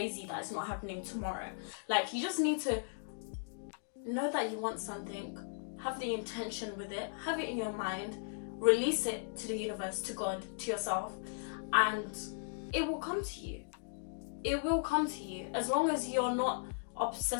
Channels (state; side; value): silent; right; digital silence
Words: that it's not happening tomorrow. Like, you just need to know that you want something, have the intention with it, have it in your mind, release it to the universe, to God, to yourself, and it will come to you. It will come to you as long as you're not